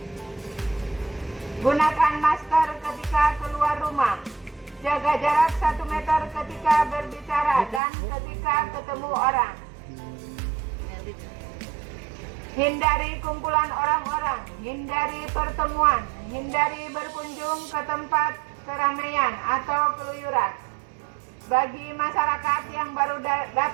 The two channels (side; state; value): left; drops out; at 7.8 s